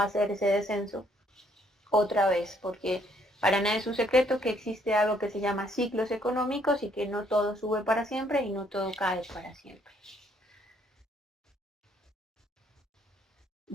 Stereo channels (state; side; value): normal; both; correlation 0.67